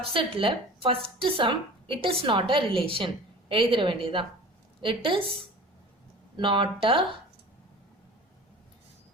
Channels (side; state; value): both; normal; correlation 0.40